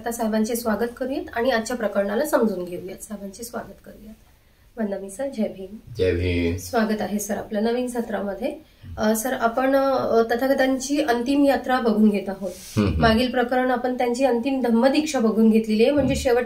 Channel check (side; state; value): both; identical; correlation 1.00